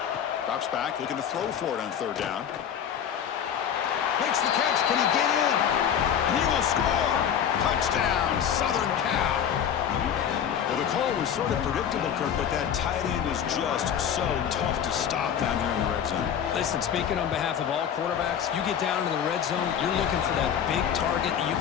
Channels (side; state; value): right; quieter; 8.7 dB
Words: Drops back, looking to throw for it on third down. Makes the catch. Can he get in? He will score. Touchdown, Southern Cal. Well, the call was sort of predictable, Kirk, but that tight end is just so tough to stop down here in the red zone. Listen, speaking on behalf of all quarterbacks, you get down into the red zone, you're looking for that big target that you